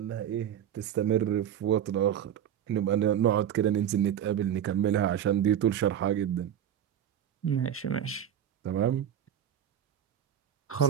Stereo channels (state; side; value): quieter; left; 9.9 dB